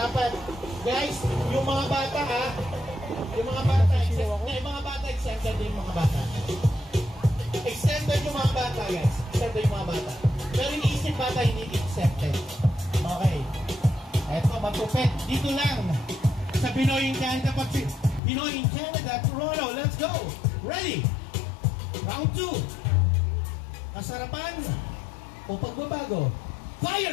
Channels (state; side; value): drops out; right; at 18.2 s